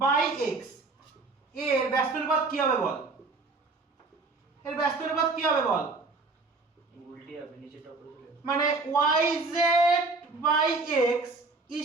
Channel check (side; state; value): left; quieter; 3.7 dB